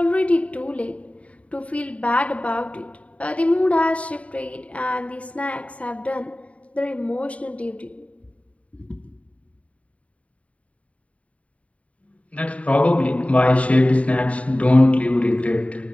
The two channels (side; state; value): right; late; 0.065 ms